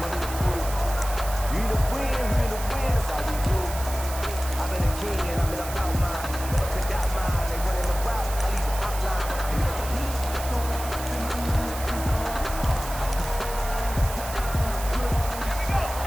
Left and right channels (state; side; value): noise; right; hiss, 10 dB below the sound